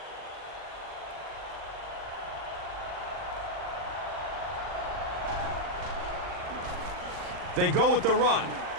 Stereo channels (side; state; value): left; late; 39 ms